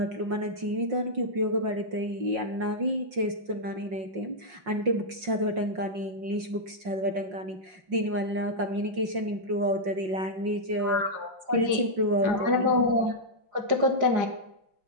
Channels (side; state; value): left; late; 5.5 ms